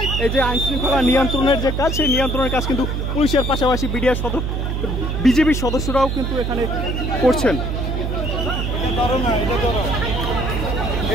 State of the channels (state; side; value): noise; right; hum, 1 dB below the sound